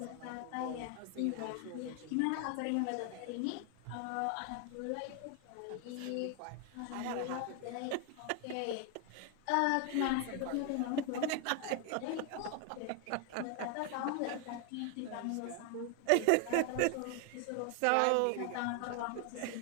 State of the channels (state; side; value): different; both; correlation 0.01